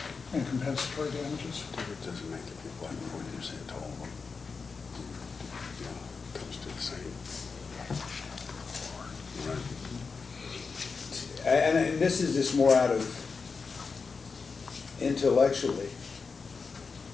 and compensatory damages? And this is just more out of intellectually,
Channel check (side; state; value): right; quieter; 4.9 dB